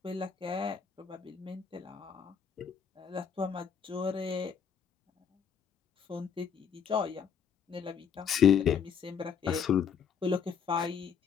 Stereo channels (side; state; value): right; quieter; 7.2 dB